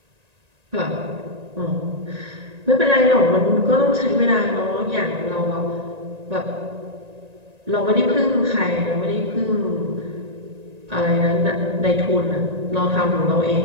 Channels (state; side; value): late; left; 1.9 ms